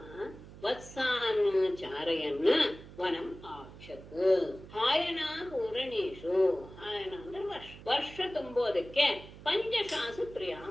ವತ್ಸಾನ್ ಚಾರಯನ್ ವನಂ ಆಕ್ಷತ್. ಹಾಯನ ಪೂರಣೇಶು, ಹಾಯನ ಅಂದ್ರೆ ವರ್ಷ ತುಂಬೋದಕ್ಕೆ ಪಂಚಶಾಸು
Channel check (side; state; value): right; noise; hum, 17 dB below the sound